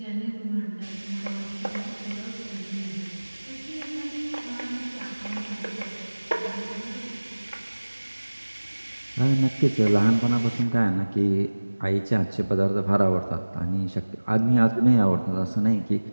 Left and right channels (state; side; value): inverted; both; correlation -1.00